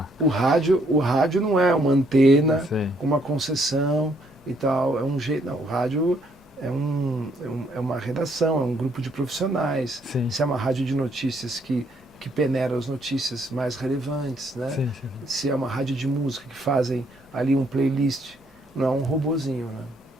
O rádio não é uma antena com uma concessão e tal. É um jeito. Não, o rádio é uma redação, é um grupo de profissionais. Sim. Se é uma rádio de notícias que peneira as notícias mais relevantes, né? Sim. Se é uma rádio de música que fazem ali um playlist, não é um robozinho, né?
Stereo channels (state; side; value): normal; both; correlation 0.69